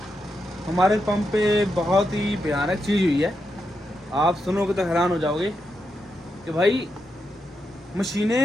हमारे पंप पे बहुत ही भयानक चीज़ हुई है। आप सुनोगे तो हैरान हो जाओगे कि भाई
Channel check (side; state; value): both; normal; correlation 0.85